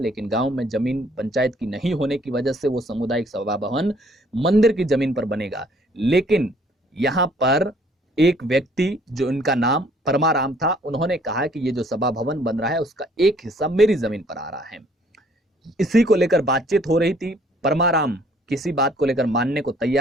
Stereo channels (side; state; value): both; normal; correlation 0.61